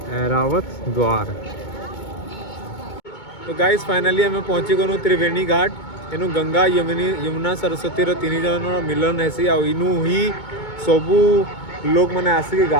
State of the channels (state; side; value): late; right; 2.2 ms